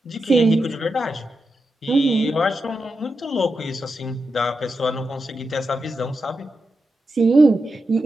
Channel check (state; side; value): normal; both; correlation 0.88